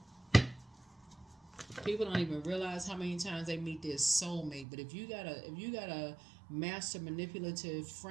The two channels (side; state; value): left; drops out; at 4.7 s